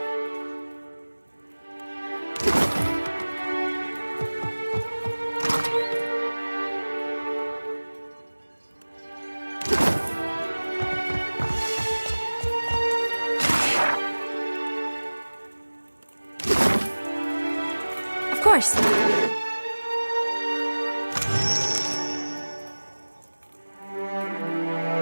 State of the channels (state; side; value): inverted; both; correlation -1.00